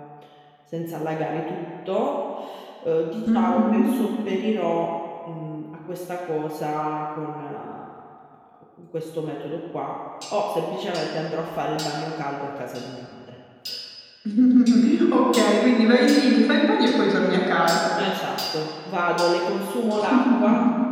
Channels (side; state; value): both; identical; correlation 1.00